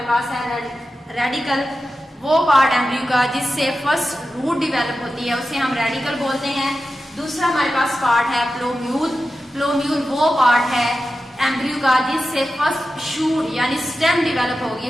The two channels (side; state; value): both; normal; correlation 0.92